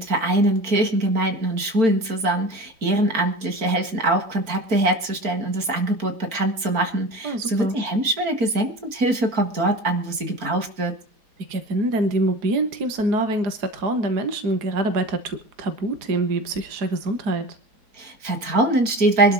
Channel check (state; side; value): late; left; 4.4 ms